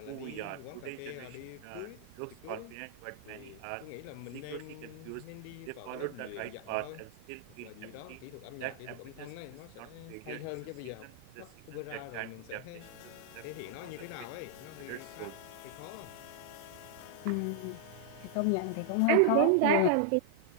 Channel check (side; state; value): both; different; correlation 0.00